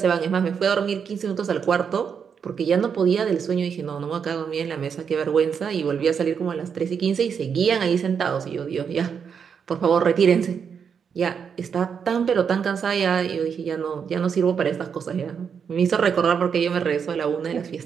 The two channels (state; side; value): quieter; left; 6.9 dB